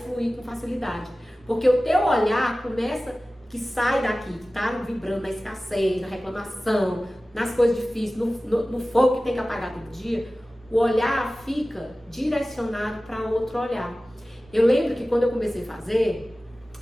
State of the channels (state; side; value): normal; both; correlation 0.96